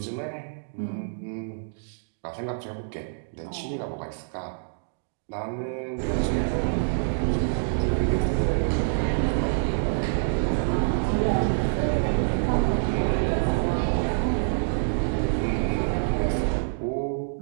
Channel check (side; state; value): left; silent; digital silence